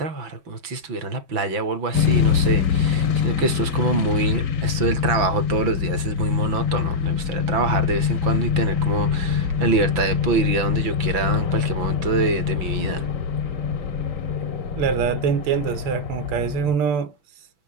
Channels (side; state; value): left; late; 6.0 ms